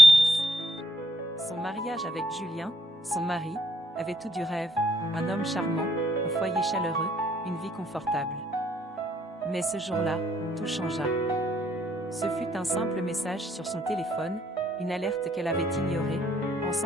Son mariage avec Julien, son mari, avait tout du rêve, un homme charmant, un foyer chaleureux, une vie confortable. Mais ce jour-là, tout changea. Ce fut un simple message sur son téléphone, une alerte qu'elle avait ignorée,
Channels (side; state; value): both; normal; correlation 0.71